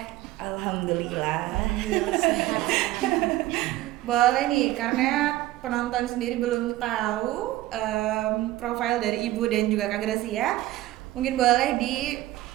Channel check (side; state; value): left; quieter; 16.1 dB